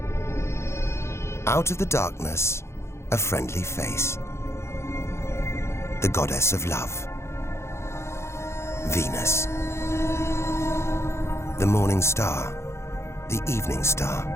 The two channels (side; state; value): right; late; 0.13 ms